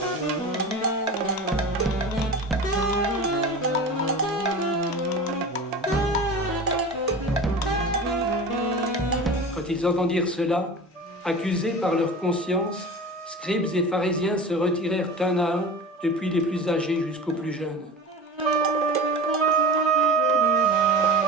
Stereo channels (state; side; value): normal; both; correlation 0.33